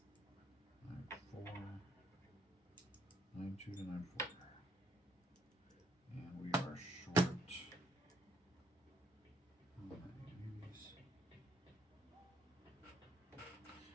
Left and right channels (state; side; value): normal; both; correlation 0.68